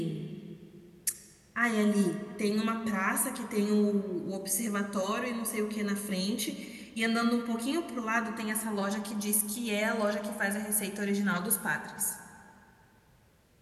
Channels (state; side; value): identical; both; correlation 1.00